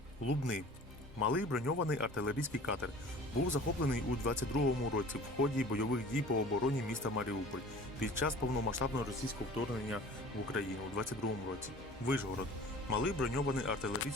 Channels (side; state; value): both; normal; correlation 0.44